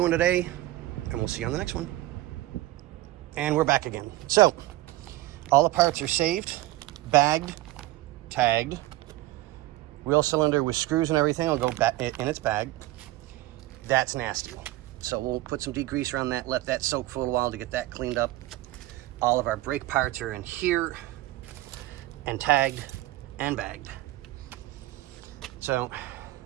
today. And we'll see you on the next one. And we're back again. So, all the parts are saved, bagged, tagged. Wheel cylinder with screws and everything will go back in its bag. That's nasty. So we'll put some degreaser on that, let that soak for a little while to get that cleaned up. All of our brake parts are in here and tagged and bagged. So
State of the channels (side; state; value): left; quieter; 17.3 dB